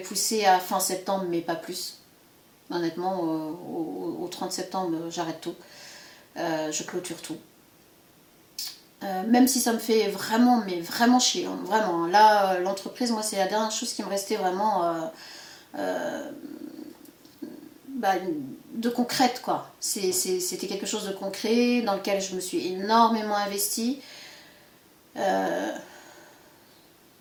à fin septembre, mais pas plus. Honnêtement, au 30 septembre, j'arrête tout. Je clôture tout. Même si ça me fait vraiment, mais vraiment chier. Hein, vraiment. Là, l'entreprise, moi, c'est la dernière chose qui me restait vraiment bah, de concrète, quoi. C'était quelque chose de concret dans lequel je me suis énormément investie.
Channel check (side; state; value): both; identical; correlation 1.00